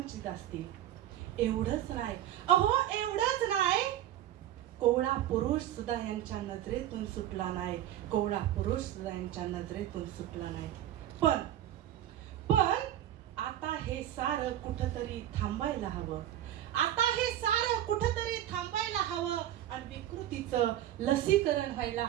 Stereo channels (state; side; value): quieter; left; 12.2 dB